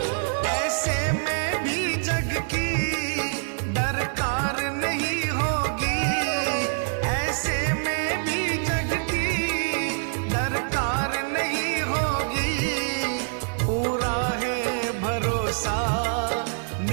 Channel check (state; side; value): silent; left; 60 dB below the other